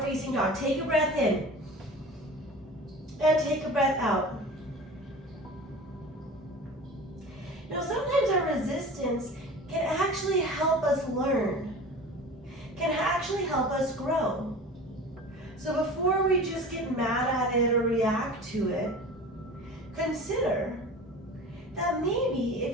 facing dog. Take a breath in, and take a breath out. Now, sometimes our resistance can actually help us learn, can actually help us grow. So before we just get mad at it or react to it, consider that maybe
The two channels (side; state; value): both; normal; correlation 0.37